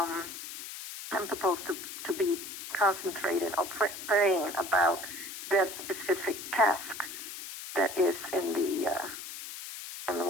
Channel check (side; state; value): left; noise; hiss, 9 dB below the sound